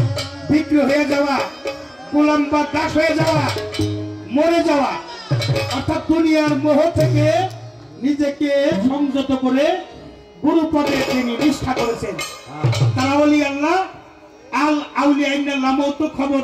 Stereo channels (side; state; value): both; identical; correlation 1.00